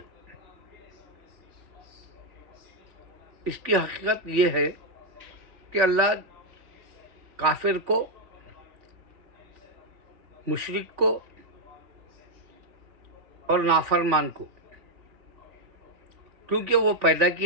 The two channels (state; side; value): late; left; 3.5 ms